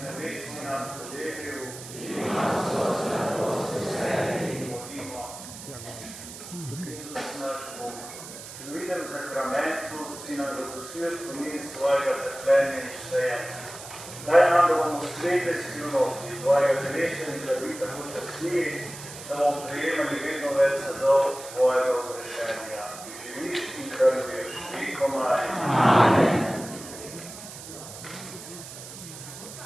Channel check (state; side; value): noise; right; hiss, 13 dB below the sound